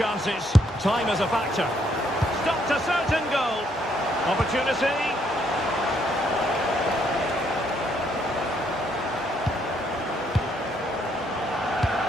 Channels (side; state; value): both; normal; correlation 0.71